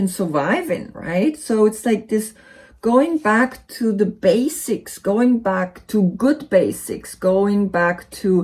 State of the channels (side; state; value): both; identical; correlation 1.00